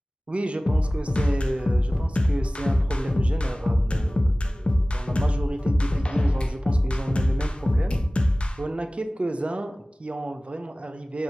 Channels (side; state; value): both; normal; correlation 0.98